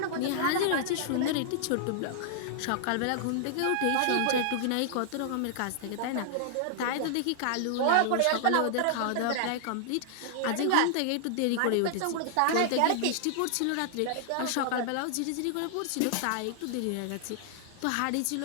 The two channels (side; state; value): both; different; correlation -0.01